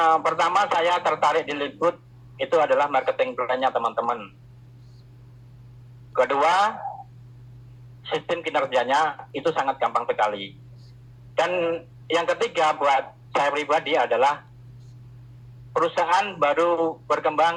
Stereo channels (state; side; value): identical; both; correlation 1.00